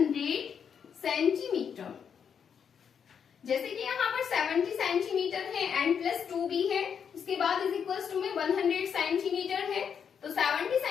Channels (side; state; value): right; quieter; 7.3 dB